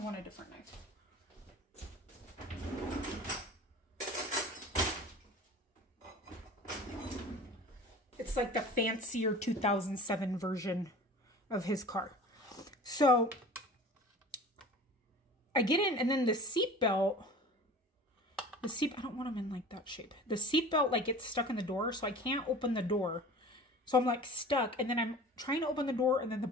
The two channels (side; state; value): both; normal; correlation 0.40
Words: want a different knife. It's like the fancier 2007 version of his car. So I get in, and then the seatbelt, I don't want them in like that shape. The seatbelt like gets stuck in the door, so I can't open the door. So I'm like stuck, and then I'm trying to open the door, and then